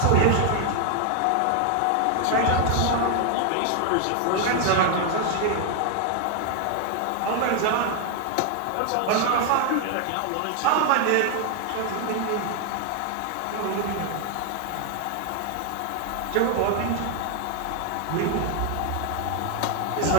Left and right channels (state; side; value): different; both; correlation 0.00